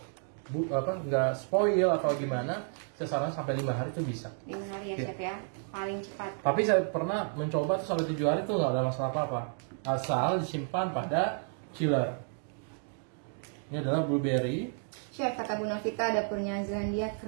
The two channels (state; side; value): silent; left; 57 dB below the other